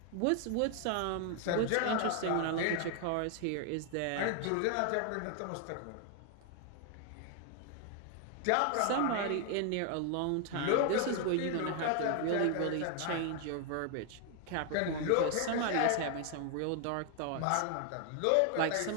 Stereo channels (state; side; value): different; both; correlation 0.00